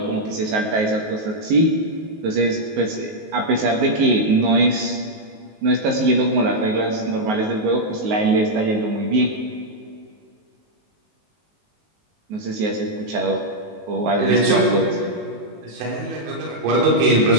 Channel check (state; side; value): late; left; 19 ms